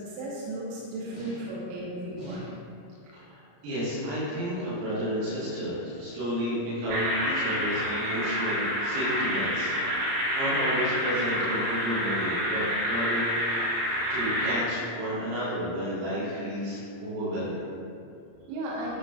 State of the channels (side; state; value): left; late; 35 ms